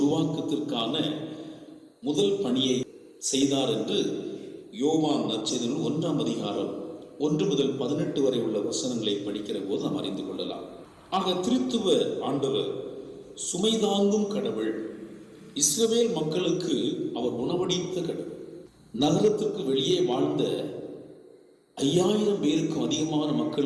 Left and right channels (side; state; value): both; identical; correlation 1.00